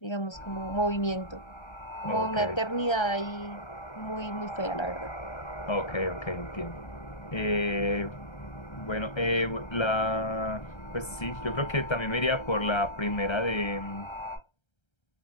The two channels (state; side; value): late; right; 1.3 ms